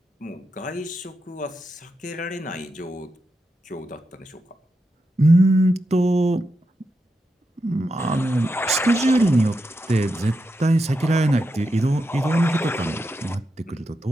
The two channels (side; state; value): both; normal; correlation 0.87